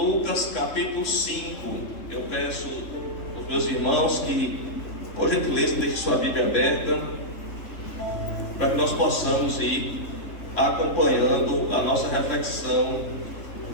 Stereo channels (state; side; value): late; right; 3.4 ms